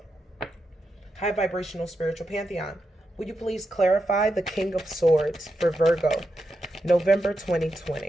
high vibrational spiritual pantheon, Will you please clarify the King of Swords for Virgo, November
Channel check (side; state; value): both; normal; correlation 0.86